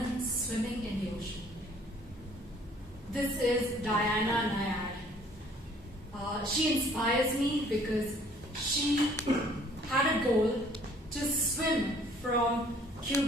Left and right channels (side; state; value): both; normal; correlation 0.57